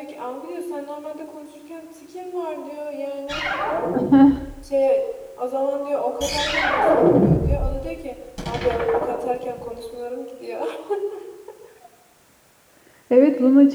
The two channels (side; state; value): both; identical; correlation 1.00